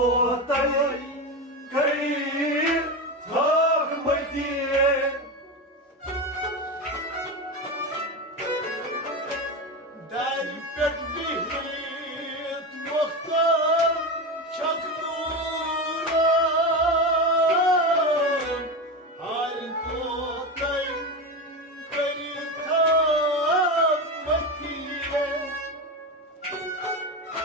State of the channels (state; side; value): normal; both; correlation 0.19